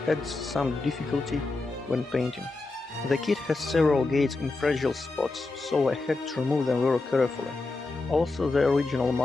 adds some difficulty when painting. The kit has several gates in fragile spots, so I had to remove them very carefully. Also, the original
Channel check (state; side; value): quieter; right; 3.4 dB